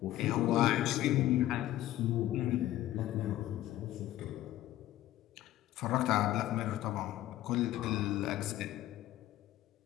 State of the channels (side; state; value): right; quieter; 14.3 dB